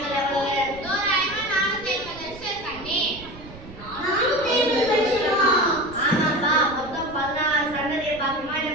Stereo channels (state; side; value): noise; right; rumble, 17 dB below the sound